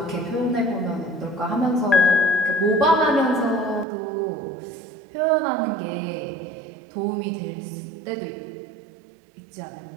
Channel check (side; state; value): left; drops out; at 3.9 s